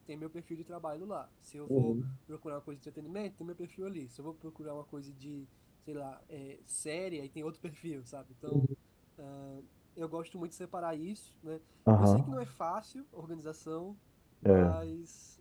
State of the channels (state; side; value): identical; both; correlation 1.00